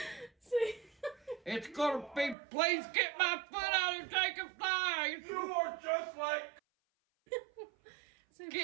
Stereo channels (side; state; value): left; drops out; at 2.4 s